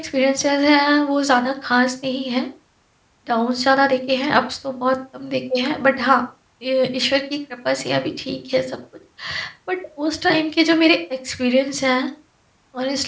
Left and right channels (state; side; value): identical; both; correlation 1.00